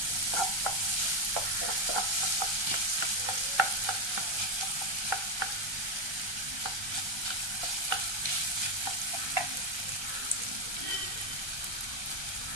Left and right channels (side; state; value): left; late; 1.2 ms